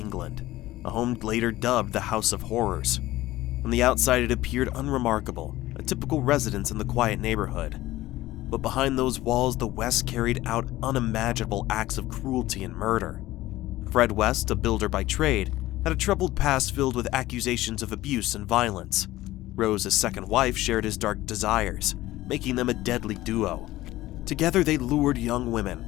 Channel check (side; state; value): right; quieter; 16.6 dB